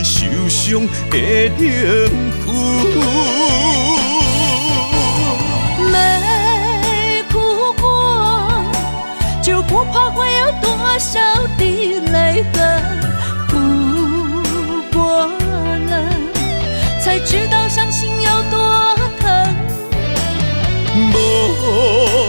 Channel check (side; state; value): both; inverted; correlation -1.00